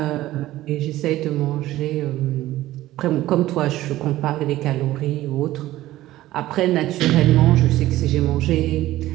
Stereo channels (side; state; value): left; quieter; 15.5 dB